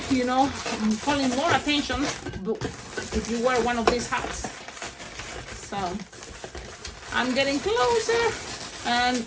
you know, calling more attention if you wear one of these hats. So I'm getting closer, and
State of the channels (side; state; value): both; identical; correlation 1.00